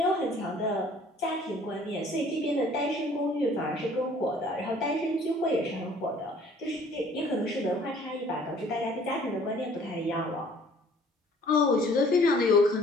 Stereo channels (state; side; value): normal; both; correlation 0.55